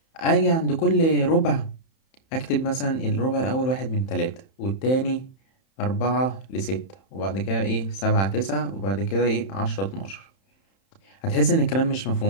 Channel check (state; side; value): late; right; 31 ms